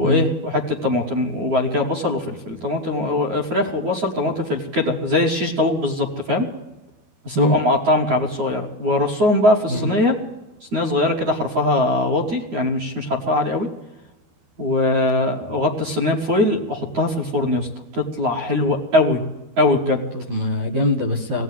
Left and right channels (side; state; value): left; late; 12 ms